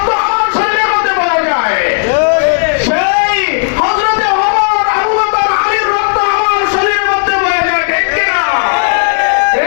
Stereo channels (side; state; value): right; silent; digital silence